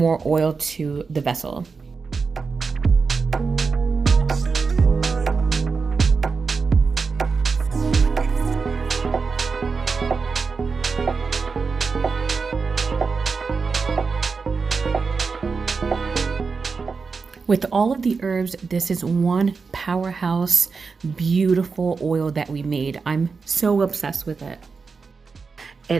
oil to the vessel. With all of the herbs, this is one powerhouse, beautiful oil that we made. I'm so obsessed with it.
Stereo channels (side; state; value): left; quieter; 4.9 dB